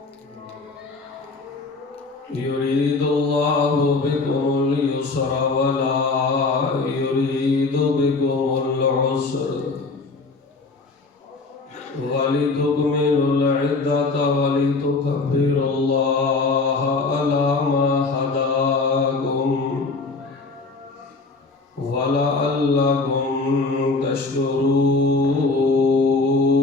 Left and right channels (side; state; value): right; quieter; 3.8 dB